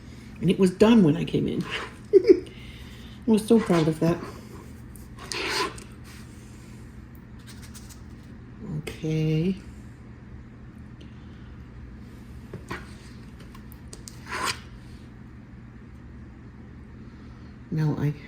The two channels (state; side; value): identical; both; correlation 1.00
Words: And it was done when I came in. I was so proud of that. Okay. Now